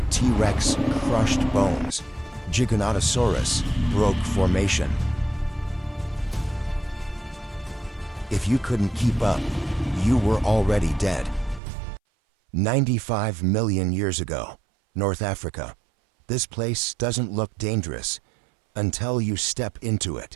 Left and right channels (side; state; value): left; drops out; at 11.6 s